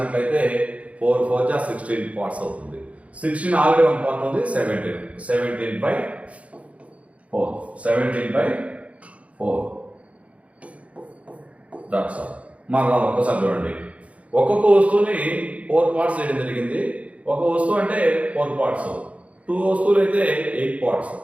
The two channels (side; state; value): left; late; 0.065 ms